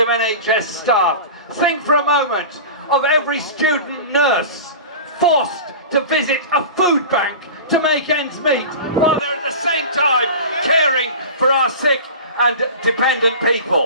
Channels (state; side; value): inverted; both; correlation -0.33